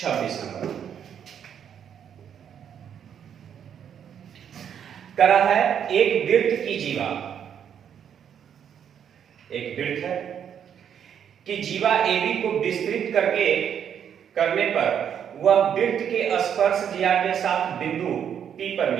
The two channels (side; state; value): left; quieter; 8.6 dB